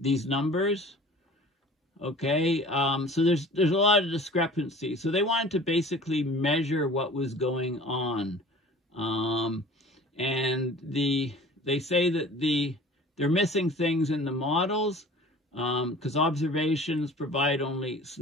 numbers. Okay, so there's a lot of discrepancy. So they wanted to basically measure what was going on, and they say that they're missing things in the models because observations provide only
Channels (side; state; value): both; normal; correlation 0.44